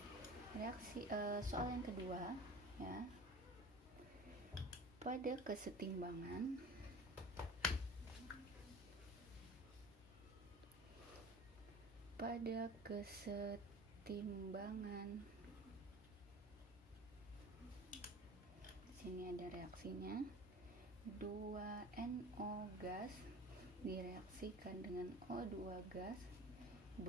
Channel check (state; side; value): normal; both; correlation 0.41